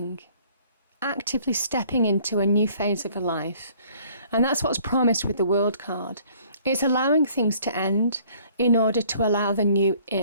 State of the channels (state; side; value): inverted; both; correlation -0.58